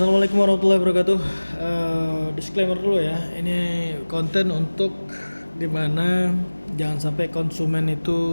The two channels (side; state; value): both; inverted; correlation -1.00